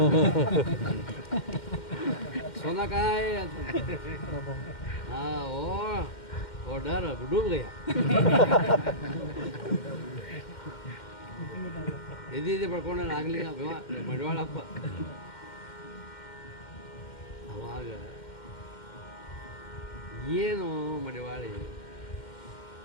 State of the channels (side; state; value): right; late; 2.1 ms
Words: ಸೋನಾಕಾಯ್ ಅಂತ. ಹಾಂ ಓ ಡರ್ ಡೂಬ್ ಗಯ. ಎದಿ ಬಡ್ಕೊಂಡ ನಾಗಲಿಂಗ ಮಡಿವಾಳಪ್ಪ. ಅವಾಗ ಏನು ಮಡಿವಾಳಿ,